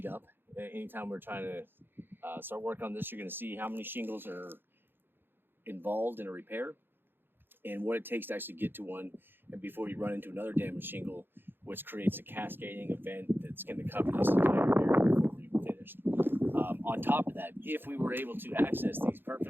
up. Anytime we're trying to start work on this, you're going to see how many shingles are involved in a repair and what it takes to actually get to one, and before you run into another damaged shingle, which creates a cascading event that's going to cover this entire area before we're even finished. On top of that, if we were able to access these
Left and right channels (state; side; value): late; left; 0.10 ms